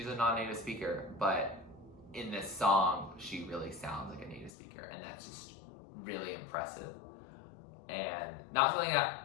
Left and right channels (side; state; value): right; drops out; at 4.5 s